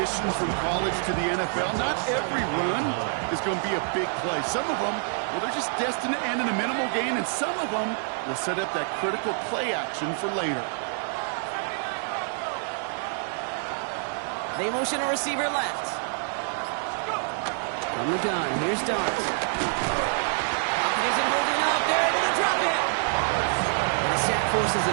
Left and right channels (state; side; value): silent; left; 60 dB below the other